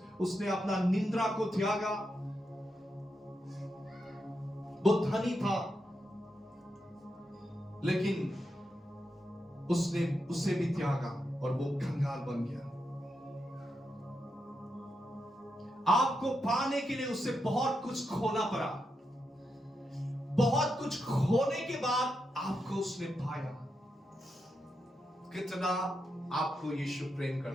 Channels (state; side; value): normal; both; correlation 0.85